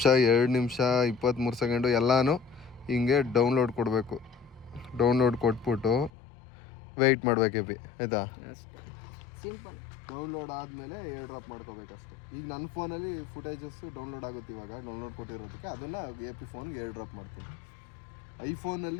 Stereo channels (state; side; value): drops out; right; at 6.1 s